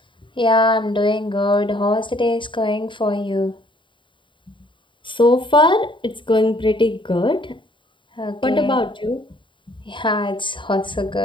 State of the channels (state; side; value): late; right; 0.23 ms